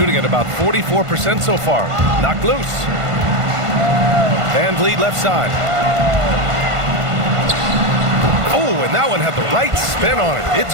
at about 44% so far. Knocked loose. Van Vliet left side. Oh, and that one had the right spin on it. It's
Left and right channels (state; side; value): late; left; 1.5 ms